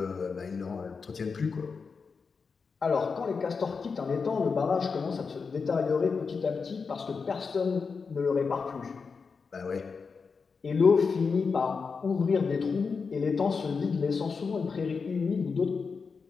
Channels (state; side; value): quieter; right; 5.2 dB